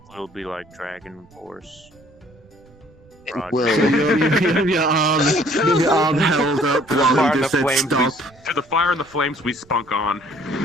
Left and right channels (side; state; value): right; noise; rumble, 28 dB below the sound